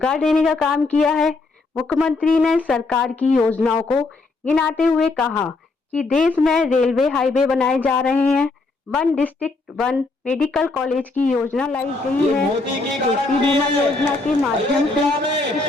देने का काम किया है। मुख्यमंत्री ने सरकार की योजनाओं को गिनाते हुए कहा कि देश में रेलवे हाईवे बनाए जा रहे हैं, 1 डिस्ट्रिक्ट 1 मेडिकल कॉलेज की योजना लाई गई है, कृषि बीमा योजना के माध्यम से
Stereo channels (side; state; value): right; quieter; 3.5 dB